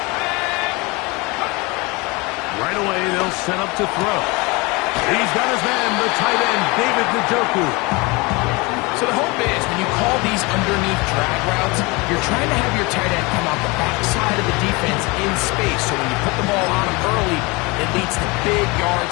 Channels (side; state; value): right; quieter; 25.9 dB